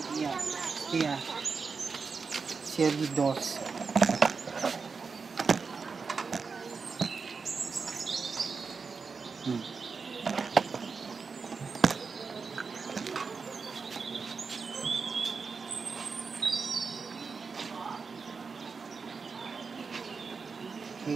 Iya. Iya. Serie 2. Hmm.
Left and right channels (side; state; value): left; quieter; 5.0 dB